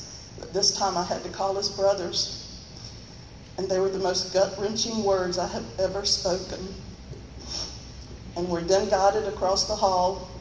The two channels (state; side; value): identical; both; correlation 1.00